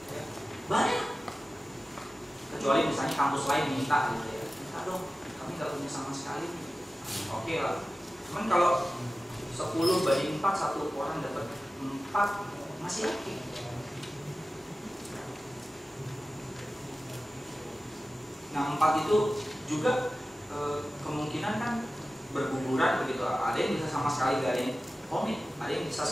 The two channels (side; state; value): both; normal; correlation 0.95